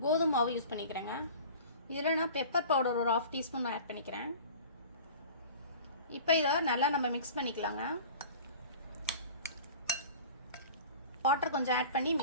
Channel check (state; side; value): inverted; both; correlation -0.40